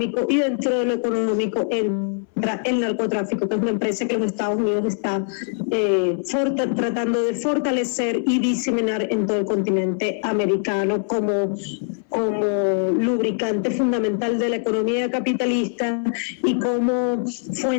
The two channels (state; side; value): silent; right; 62 dB below the other